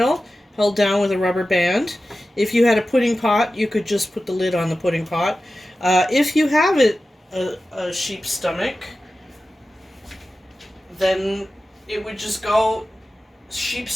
held down with a rubber band. If you had a pudding pot, you could just put the lid on the pudding pot. If you have a sheep's stomach, then it would just go sheep's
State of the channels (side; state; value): both; normal; correlation 0.94